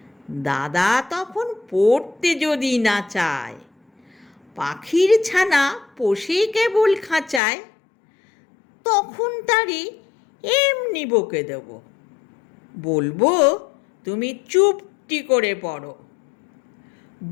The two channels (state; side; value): drops out; right; at 7.4 s